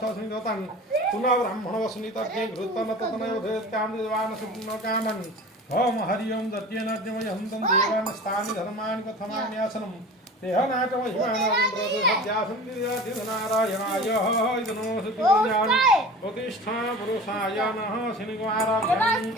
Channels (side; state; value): both; normal; correlation 0.38